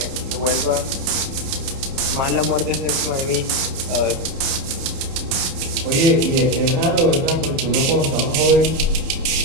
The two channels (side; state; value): left; late; 30 ms